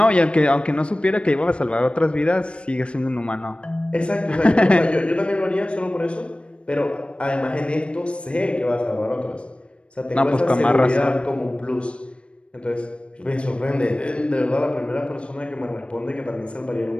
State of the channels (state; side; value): late; right; 0.058 ms